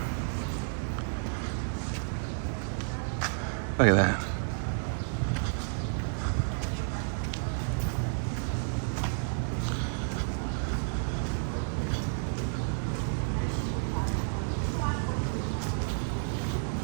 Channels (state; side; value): silent; left; digital silence